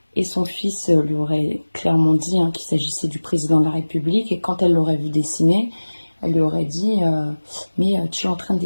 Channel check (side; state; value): both; inverted; correlation -1.00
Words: Et son fils lui aurait clairement dit qu'il s'agissait du président de la République. Et quand elle l'aurait vu dessiner, elle lui aurait dit mais tu es en train de